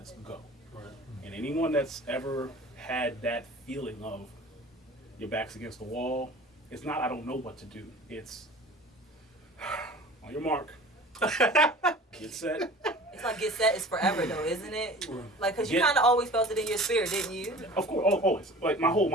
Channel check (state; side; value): normal; both; correlation 0.42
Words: go. Right. And anyone that's ever had that feeling of your back's against the wall, it's not I don't know what to do. It's on your mark, get set. It's like get set is forever though, isn't it? Like, cause you Get- kind of always felt it in your spirit, didn't you? Of course, always, like my